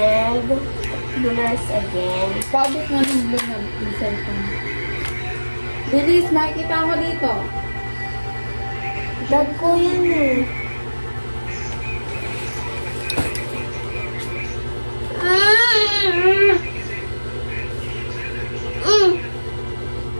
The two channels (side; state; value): both; inverted; correlation -1.00